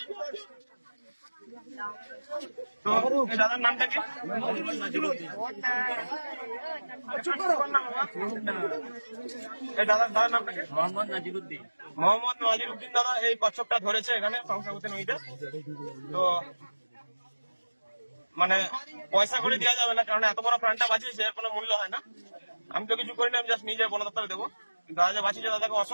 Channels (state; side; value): inverted; both; correlation -1.00